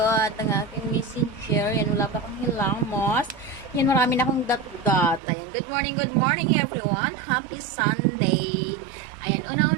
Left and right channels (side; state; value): left; drops out; at 5.2 s